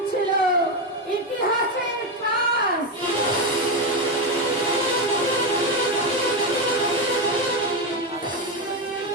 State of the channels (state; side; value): normal; both; correlation 0.10